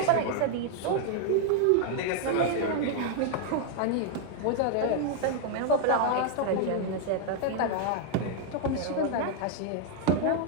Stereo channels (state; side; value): different; both; correlation 0.00